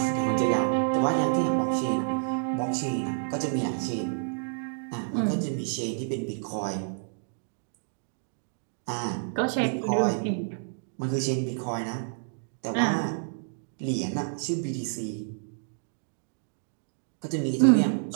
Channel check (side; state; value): left; silent; digital silence